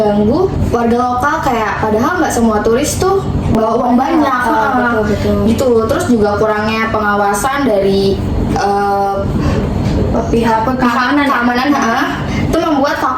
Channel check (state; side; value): identical; both; correlation 1.00